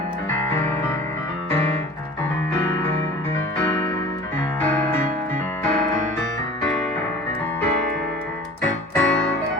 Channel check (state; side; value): normal; both; correlation 0.42